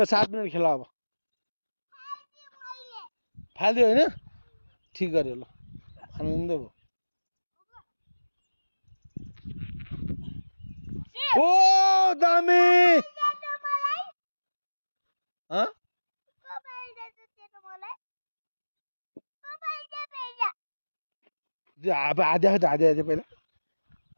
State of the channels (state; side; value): inverted; both; correlation -1.00